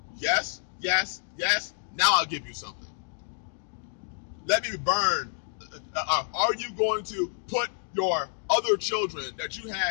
Yes, yes, yes. Now I'll give you something. Let me burn. Are you going to put your other children that you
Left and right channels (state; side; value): silent; right; digital silence